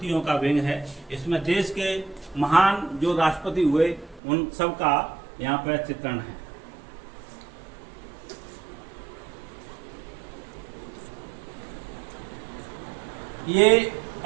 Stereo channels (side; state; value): left; drops out; at 4.2 s